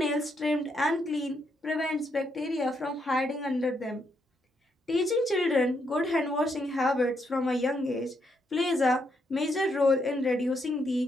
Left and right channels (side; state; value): both; normal; correlation 0.77